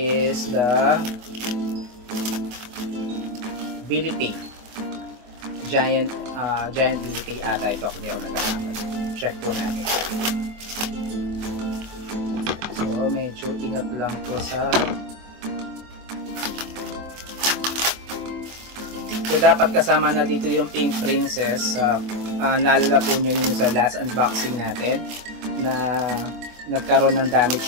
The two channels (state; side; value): late; left; 24 ms